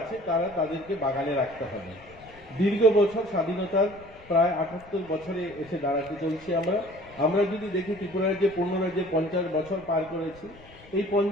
আছে তারা তাদেরকে বাগানে রাখতে হবে। দীর্ঘ বছর স্বাধীনতার প্রায় 78 বছরে এসে দাঁড়াতে চলছি আমরা যদি দেখি ত্রিপুরার যে পূর্ণরাজ্যে 50 বছর পার করেছি, এই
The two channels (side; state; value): left; noise; rumble, 23 dB below the sound